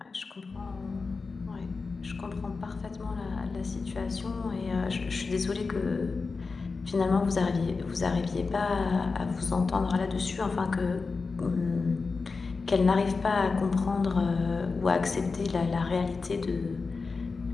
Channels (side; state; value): right; quieter; 4.3 dB